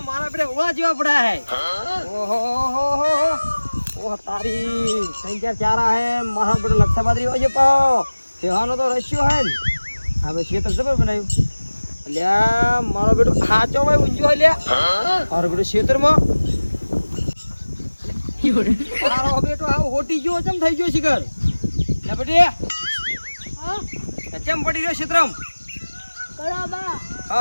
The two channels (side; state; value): both; inverted; correlation -1.00